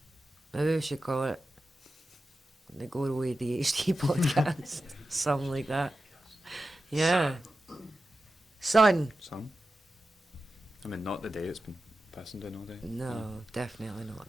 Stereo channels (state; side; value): normal; both; correlation 0.92